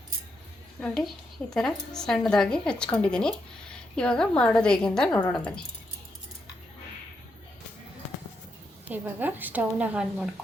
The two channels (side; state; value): both; normal; correlation 0.82